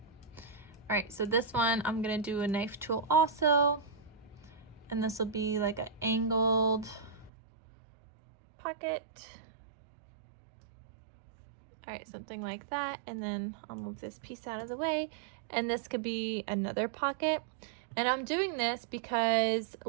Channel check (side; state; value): left; drops out; at 7.3 s